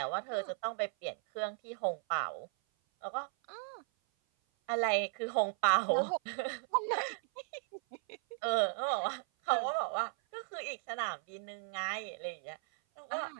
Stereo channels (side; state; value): left; silent; 54 dB below the other